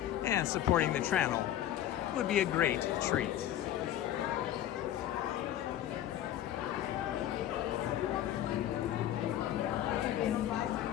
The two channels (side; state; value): right; quieter; 12.0 dB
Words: And supporting the channel would be a great treat.